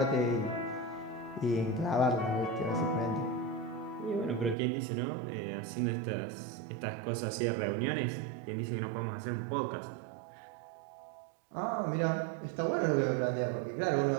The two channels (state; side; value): drops out; left; at 4.5 s